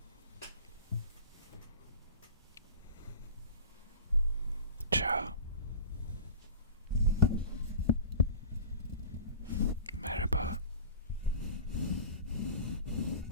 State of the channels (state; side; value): inverted; both; correlation -0.36